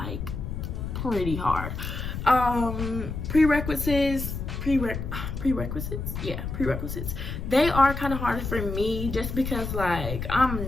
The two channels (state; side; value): noise; left; rumble, 5 dB below the sound